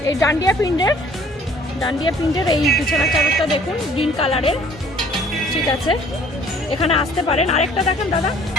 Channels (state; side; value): normal; both; correlation 0.55